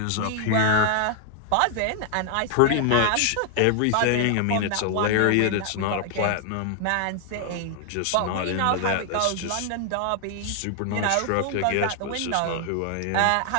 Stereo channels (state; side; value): different; both; correlation 0.00